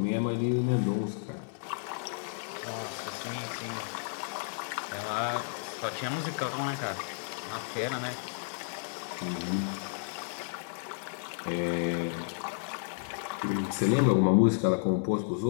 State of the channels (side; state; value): right; silent; 56 dB below the other